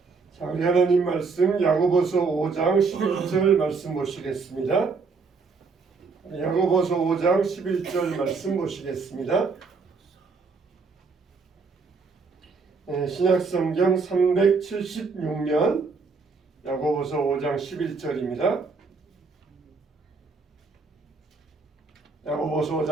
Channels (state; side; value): quieter; left; 4.6 dB